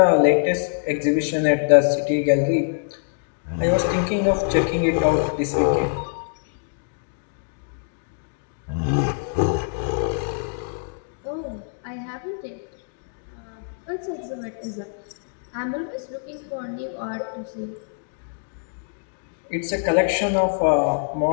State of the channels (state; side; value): silent; right; digital silence